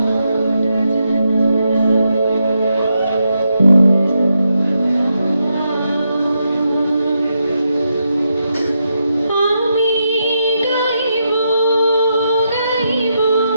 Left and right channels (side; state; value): both; inverted; correlation -0.83